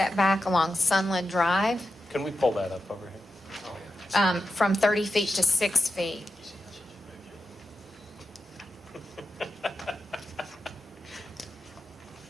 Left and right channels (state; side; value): normal; both; correlation 0.90